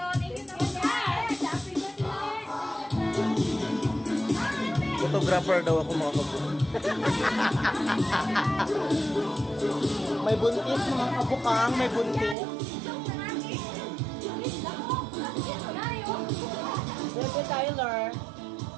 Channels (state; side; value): drops out; left; at 12.4 s